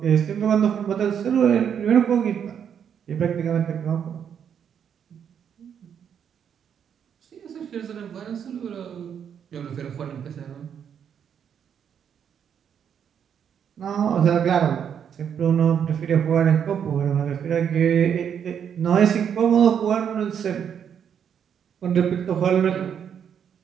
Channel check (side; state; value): left; quieter; 8.2 dB